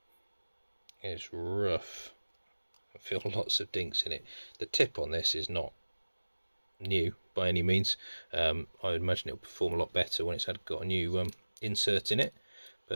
is rough. I feel lots of dinks in it. The tip on this is not new by any means. I would imagine it'll perform a lot better when it's got a new insert in it,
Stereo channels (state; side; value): inverted; both; correlation -1.00